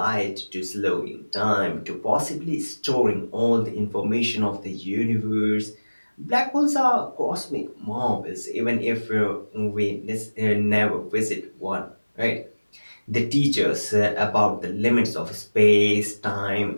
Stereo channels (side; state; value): both; inverted; correlation -1.00